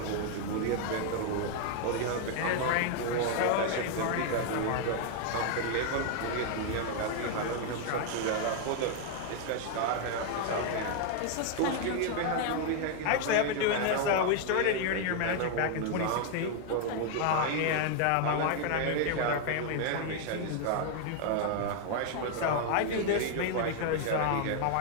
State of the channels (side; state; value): both; different; correlation 0.00